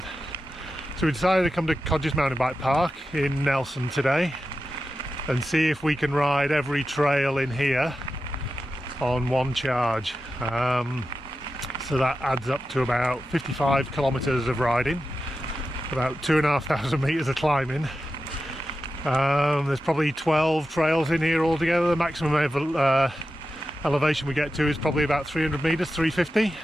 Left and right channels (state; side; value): normal; both; correlation 0.91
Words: we decided to come to Codgers Mountain Bike Park in Nelson today and see if we can ride every trail in here on one charge. So that adds up to about 55 kilometers of riding, about 2,500 meters of climbing. There's probably 12 trails in here altogether. The maximum elevation we get to is probably about 300 meters, 350.